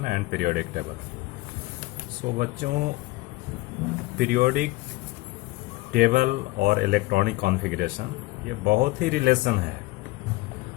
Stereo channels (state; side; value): quieter; right; 20.9 dB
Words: and periodic table. So बच्चों, पीरियोडिक टेबल और इलेक्ट्रॉनिक कॉन्फ़िगरेशन ये बहुत ही रिलेशन है,